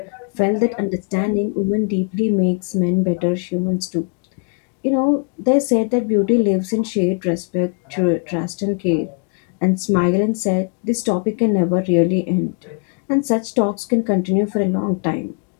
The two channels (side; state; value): right; quieter; 40.0 dB